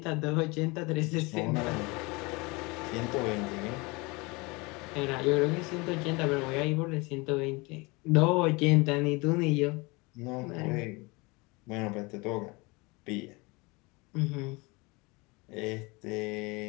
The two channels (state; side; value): quieter; right; 25.9 dB